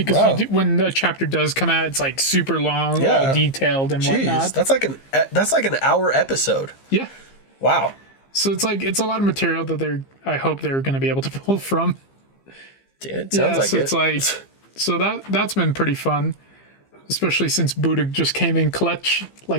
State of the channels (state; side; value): late; right; 15 ms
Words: Wow. you do, when the chapter does come out, it's like super long, Yeah. all detailed and Jeez, whatnot. that's like an hour episode. Yeah. Wow. So it's a lot of material that I hope they're going to be able to pull from. Dude, it sounds like so it. it's like so that's been pretty fun. especially since Buddha just came in clutch,